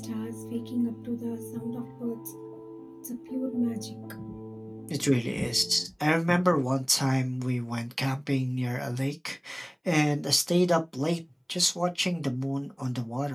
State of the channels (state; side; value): identical; both; correlation 1.00